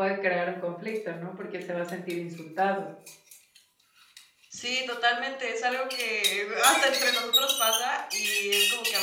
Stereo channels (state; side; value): identical; both; correlation 1.00